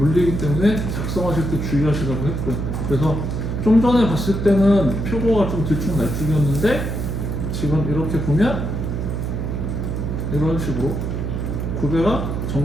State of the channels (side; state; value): right; noise; hum, 2 dB below the sound